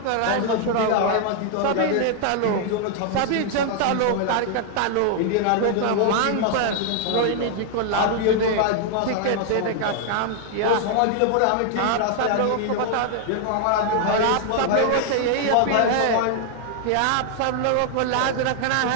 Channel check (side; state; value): both; different; correlation 0.00